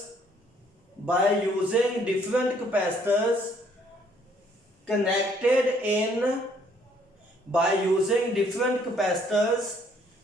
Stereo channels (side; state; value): both; normal; correlation 0.64